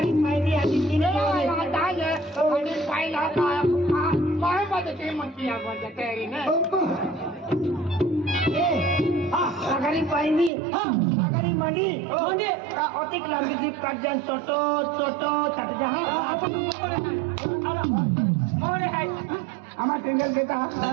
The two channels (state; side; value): drops out; left; at 10.5 s